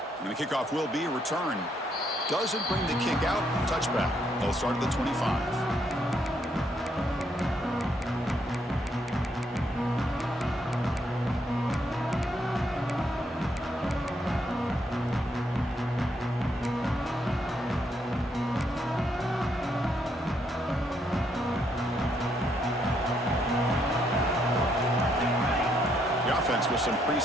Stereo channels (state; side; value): normal; both; correlation 0.74